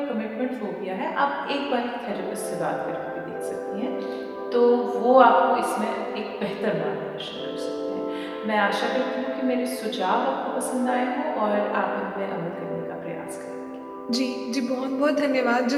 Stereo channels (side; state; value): both; identical; correlation 1.00